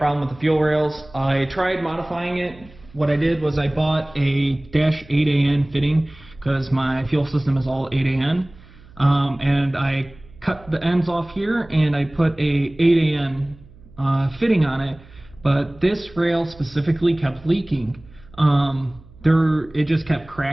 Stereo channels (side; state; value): right; noise; hum, 23 dB below the sound